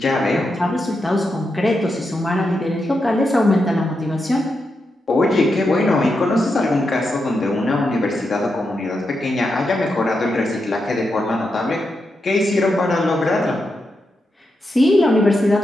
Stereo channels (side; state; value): both; normal; correlation 0.86